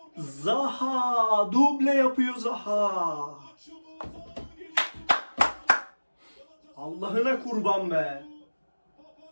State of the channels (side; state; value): both; inverted; correlation -1.00